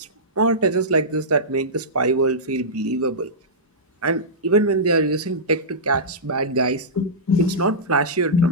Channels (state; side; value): normal; both; correlation -0.15